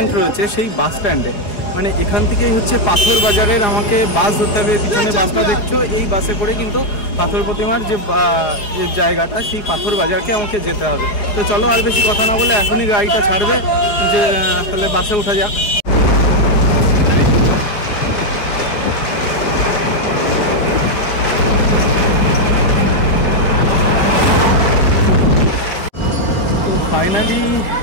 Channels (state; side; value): late; right; 4.8 ms